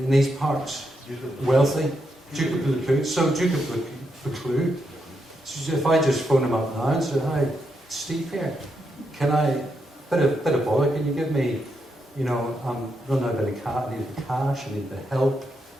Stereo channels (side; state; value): both; normal; correlation 0.82